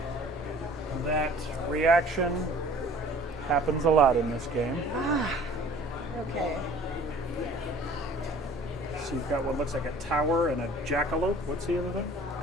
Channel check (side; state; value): both; normal; correlation 0.50